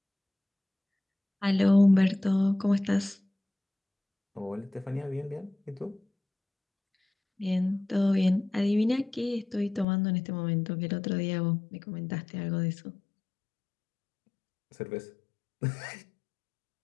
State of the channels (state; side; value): drops out; right; at 9.9 s